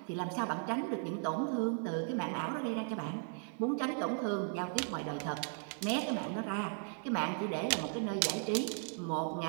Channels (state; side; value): silent; left; 53 dB below the other